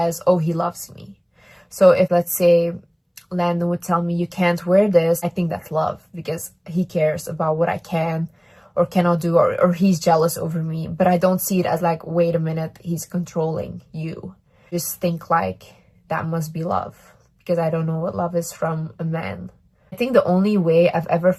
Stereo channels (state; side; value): identical; both; correlation 1.00